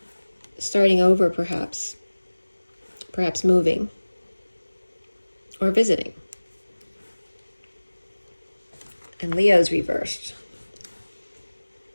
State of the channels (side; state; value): both; inverted; correlation -1.00